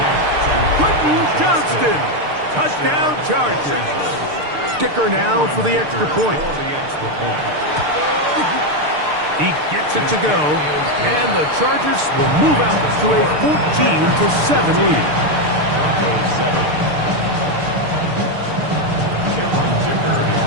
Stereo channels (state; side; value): late; left; 6.7 ms